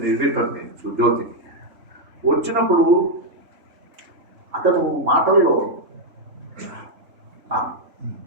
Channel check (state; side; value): late; left; 3.3 ms